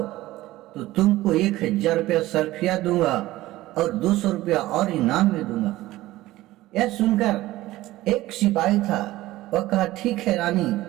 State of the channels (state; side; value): quieter; left; 16.8 dB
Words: तो तुमको 1000 रुपया सरफिया दूंगा और 200 रुपया और इनाम में दूंगा। यह सुनकर एक सिपाही था, वह कहा ठीक है रानी,